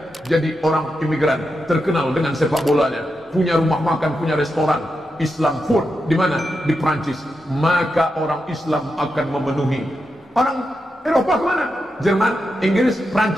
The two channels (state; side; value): normal; both; correlation 0.87